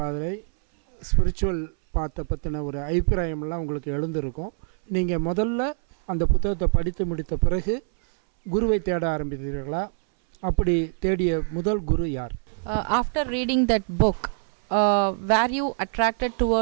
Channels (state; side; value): silent; left; 62 dB below the other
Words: பார்வை, ஸ்பிரிச்சுவல் பாத்தை பற்றின ஒரு அபிப்பிராயமெல்லாம் உங்களுக்கு எழுந்திருக்கும். நீங்கள் முதல்ல அந்த புத்தகத்தை படித்து முடித்த பிறகு குருவை தேட ஆரம்பித்தீர்களா? அப்படி தேடிய முதல் குரு யார்? After reading that book, were you attracted